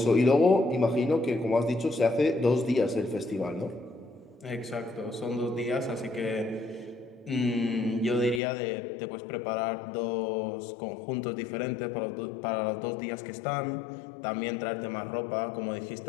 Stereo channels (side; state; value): right; drops out; at 8.4 s